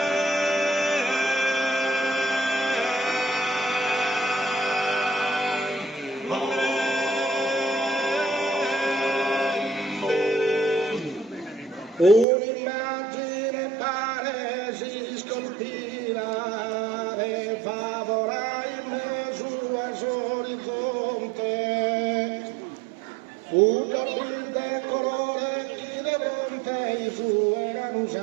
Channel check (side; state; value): left; drops out; at 12.2 s